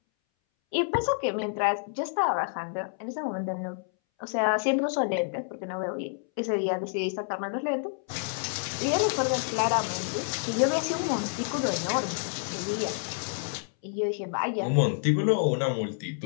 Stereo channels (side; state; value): right; silent; 59 dB below the other